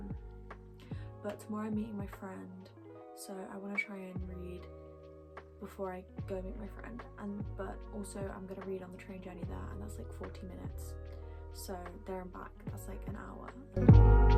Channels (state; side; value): identical; both; correlation 1.00